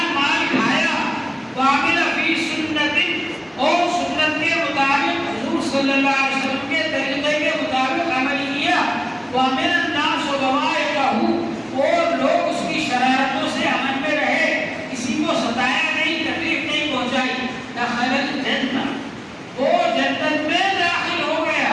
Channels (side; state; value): both; identical; correlation 1.00